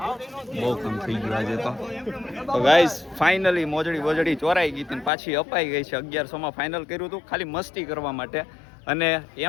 બહુ કામ થઈ ગયું આજે તો ગાઈસ ફાઇનલી મોજડી ચોરાઈ ગઈ હતી ને પાછી અપાઈ ગઈ છે. 1100 માં ફાઇનલ કર્યું હતું ખાલી મસ્તી કરવા માટે અને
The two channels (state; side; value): drops out; right; at 5.1 s